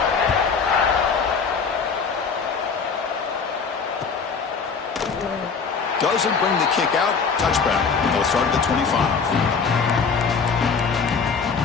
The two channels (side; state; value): right; quieter; 5.5 dB